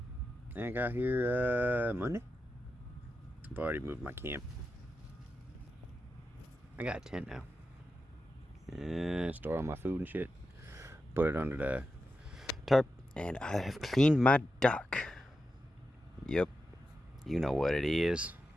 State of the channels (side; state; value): both; normal; correlation 0.89